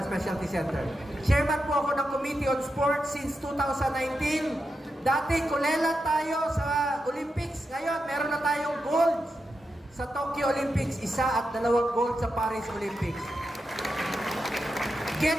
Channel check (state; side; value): normal; both; correlation 0.87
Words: Specialty Center. Chairman po ako ng Committee on Sports since 2019. Dati, kulela tayo sa Olympics. Ngayon, meron na tayong gold sa Tokyo Olympics. 1 at 2 gold sa Paris Olympics.